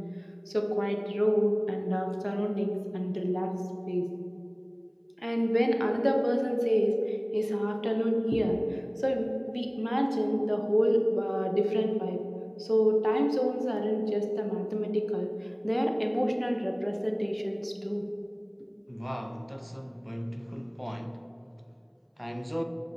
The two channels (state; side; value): identical; both; correlation 1.00